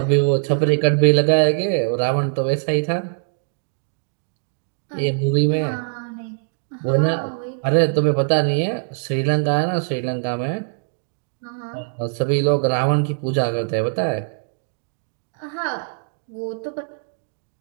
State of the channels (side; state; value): left; silent; digital silence